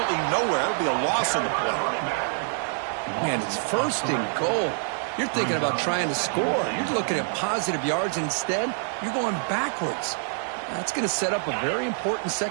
nowhere. It'll be a loss on the play. Man, it's 1st and goal. You're thinking about trying to score. You're looking at positive yards, and instead, you're going backwards. That's going to set up a very important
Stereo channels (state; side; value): silent; left; digital silence